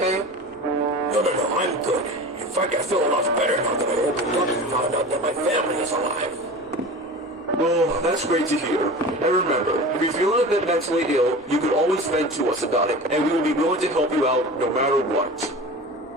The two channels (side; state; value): right; noise; rumble, 30 dB below the sound